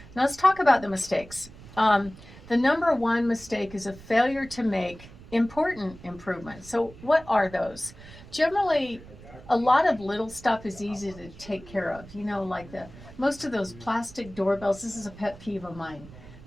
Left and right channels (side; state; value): right; noise; rumble, 19 dB below the sound